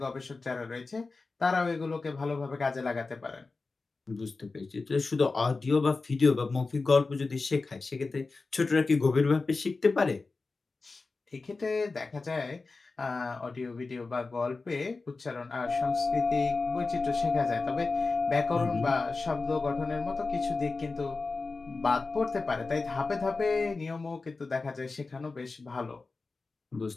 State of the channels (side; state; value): right; quieter; 3.9 dB